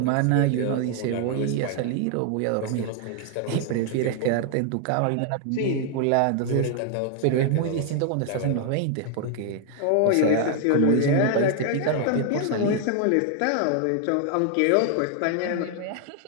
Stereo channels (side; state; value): both; different; correlation 0.00